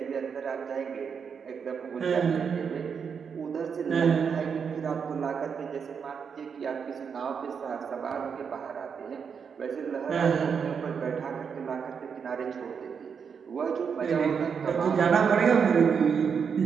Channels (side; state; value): left; quieter; 6.5 dB